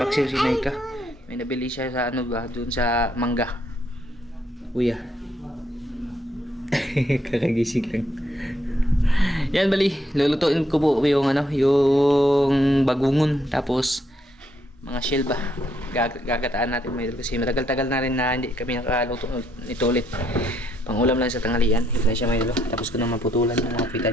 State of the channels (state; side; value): normal; both; correlation 0.74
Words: si Naika. May nabili siya sa ano ba, dun sa mangga. Kuya. Kakagising lang. Yan, bali, lulutuin ko po yung ano, yung bagungon, tapos mga shell ba. Gagataan natin, mga idol, kasi matagal-tagal na rin na hindi kami nakaluto nito ulit. Pangulam lang sa tanghalian. Ito na siya, mga idol. Tapos ko na maputulan ng mga pitan